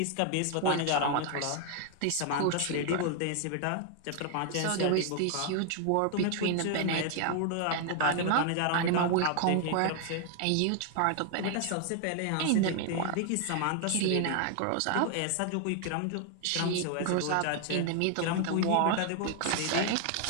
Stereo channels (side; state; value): both; different; correlation 0.00